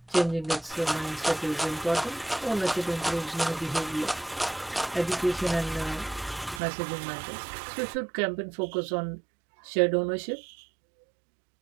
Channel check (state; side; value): drops out; left; at 6.6 s